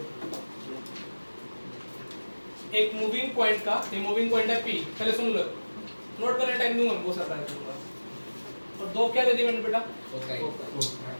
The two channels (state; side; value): inverted; both; correlation -1.00